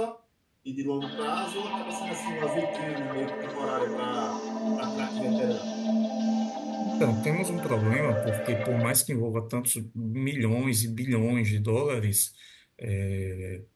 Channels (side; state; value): both; identical; correlation 1.00